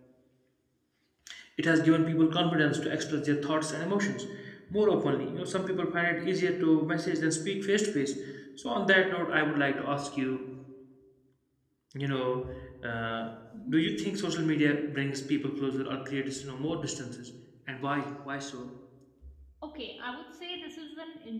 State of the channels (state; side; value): identical; both; correlation 1.00